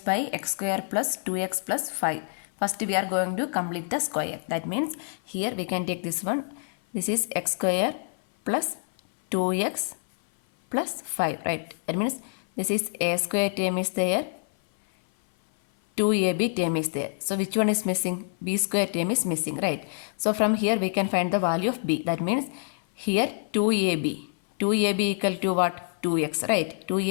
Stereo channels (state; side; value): silent; right; 57 dB below the other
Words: by x square plus 2x plus 5. First we are going to complete the square. That means here we can take this one. This is x square plus 2x plus 5, right? That means this is a square term is there, 2ab term is there. So which one is missing? B square term is missing, right? So from here we can find the value of b. That means here 2ab. 2ab equal to what? 2x, right?